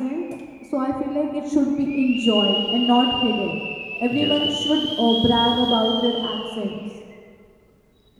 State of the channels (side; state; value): both; identical; correlation 1.00